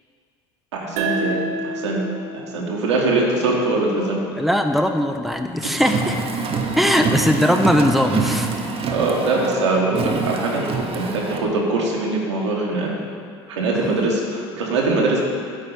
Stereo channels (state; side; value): normal; both; correlation 0.51